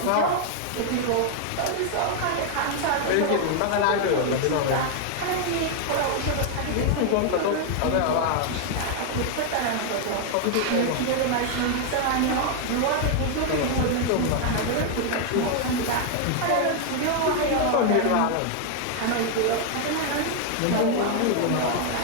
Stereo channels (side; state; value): both; different; correlation 0.00